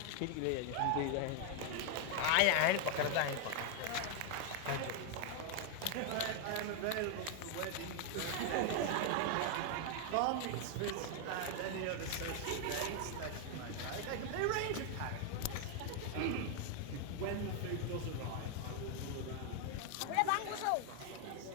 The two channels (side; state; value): both; different; correlation 0.00